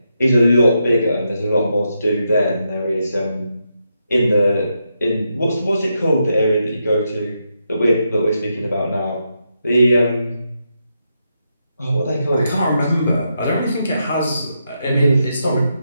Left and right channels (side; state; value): both; inverted; correlation -0.83